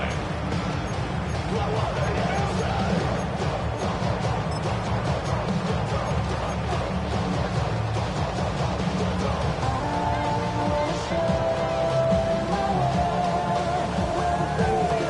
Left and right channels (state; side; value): identical; both; correlation 1.00